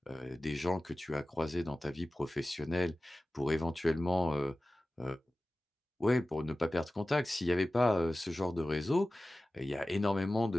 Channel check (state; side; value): normal; both; correlation 0.96